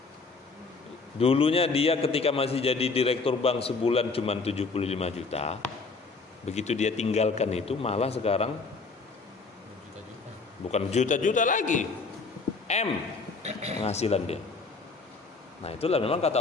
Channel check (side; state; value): right; quieter; 4.2 dB